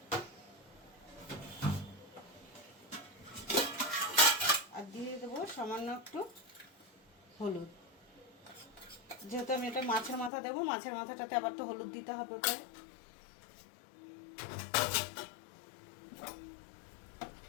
আর দিয়ে দেবো সামান্য একটু হলুদ, যেহেতু আমি এটা মাছের মাথা দেবো, মাছের মাথাটাতে আবার তো হলুদ দিতে হবে ওটায়।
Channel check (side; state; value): right; drops out; at 10.3 s